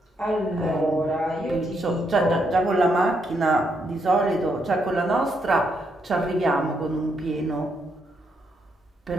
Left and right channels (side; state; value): both; normal; correlation 0.77